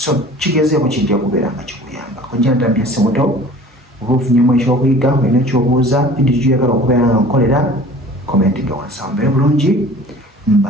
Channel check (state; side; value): normal; both; correlation 0.45